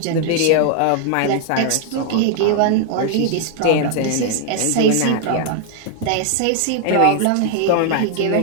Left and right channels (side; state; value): both; different; correlation 0.00